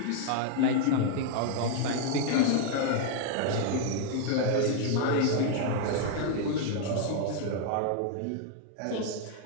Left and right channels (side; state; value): both; different; correlation 0.00